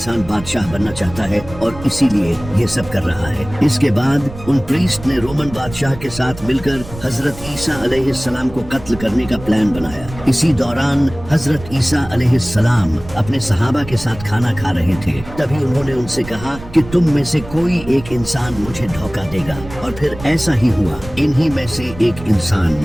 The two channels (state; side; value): noise; right; rumble, 14 dB below the sound